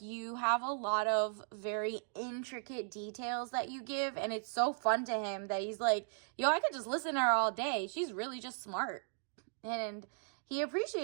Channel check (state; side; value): silent; left; digital silence